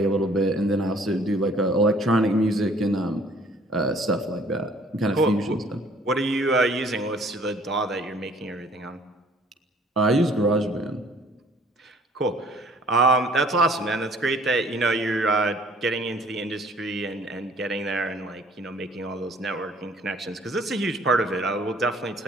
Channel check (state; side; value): normal; both; correlation 0.57